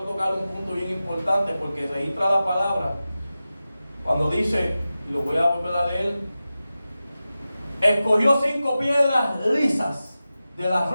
un punto bien importante, porque registra la palabra cuando dice, y lo voy a volver a leer: escogió 5 piedras lisas del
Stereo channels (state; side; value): inverted; both; correlation -0.94